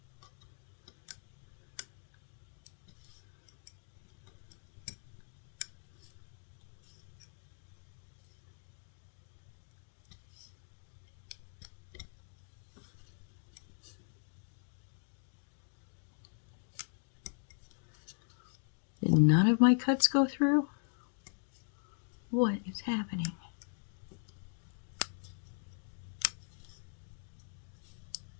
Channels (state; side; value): silent; right; digital silence